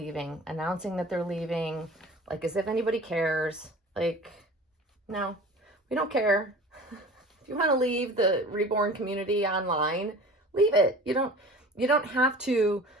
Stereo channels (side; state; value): both; normal; correlation 0.41